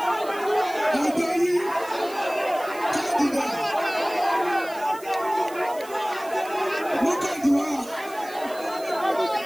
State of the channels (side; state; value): right; noise; hiss, 19 dB below the sound